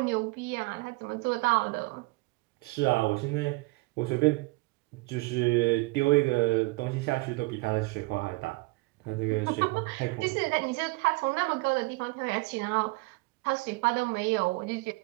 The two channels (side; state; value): left; quieter; 24.8 dB